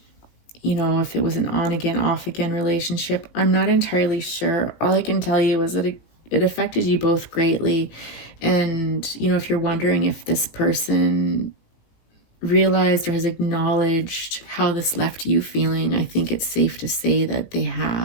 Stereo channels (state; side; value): late; right; 18 ms